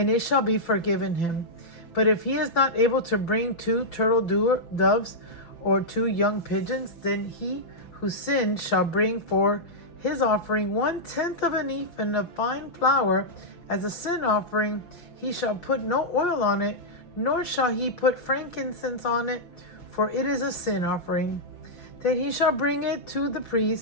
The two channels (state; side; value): late; right; 5.9 ms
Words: it shall be forgiven him. But if he is not able to bring 2 turtle doves or 2 young pigeons, then he who sinned shall bring for his offering 1/10 of an ephah of fine flour as a sin offering. He shall put no oil on it, nor shall he put frankincense on it, for it is a sin offering. Then he shall bring it to the